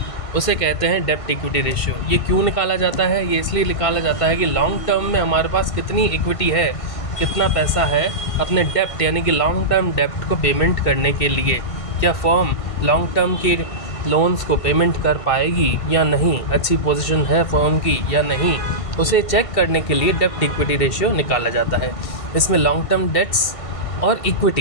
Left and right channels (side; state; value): right; late; 1.5 ms